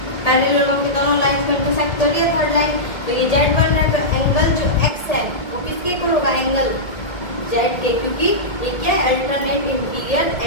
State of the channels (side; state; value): right; late; 1.7 ms